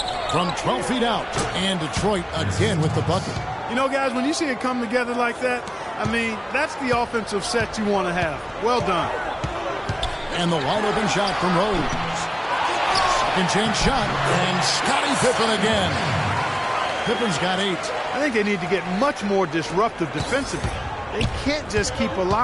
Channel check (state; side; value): identical; both; correlation 1.00